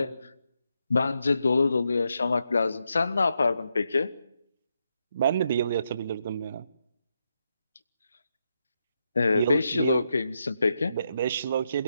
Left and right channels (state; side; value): inverted; both; correlation -0.82